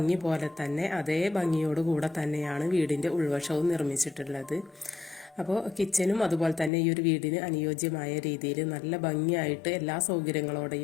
പോലെ തന്നെ അതേ ഭംഗിയോടുകൂടെ തന്നെയാണ് വീടിൻ്റെ ഉൾവശവും നിർമ്മിച്ചിട്ടുള്ളത്. അപ്പോൾ കിച്ചനും അതുപോലെ തന്നെ ഈ ഒരു വീടിന് അനുയോജ്യമായ രീതിയിൽ നല്ല ഭംഗിയായിട്ട് എല്ലാ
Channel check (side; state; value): right; drops out; at 6.7 s